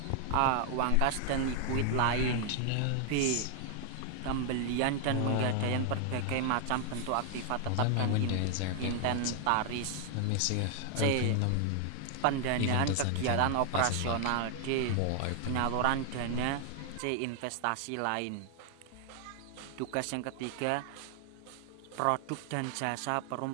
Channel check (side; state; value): both; different; correlation 0.00